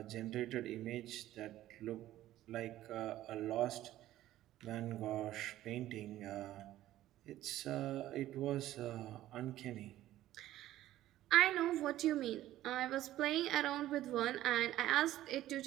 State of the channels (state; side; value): quieter; left; 14.1 dB